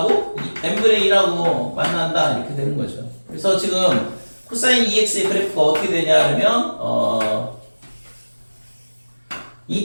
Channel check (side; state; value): both; inverted; correlation -1.00